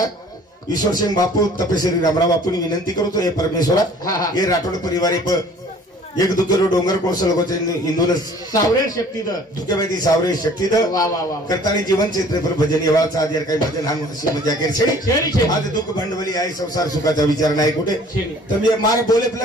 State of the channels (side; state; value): both; normal; correlation 0.52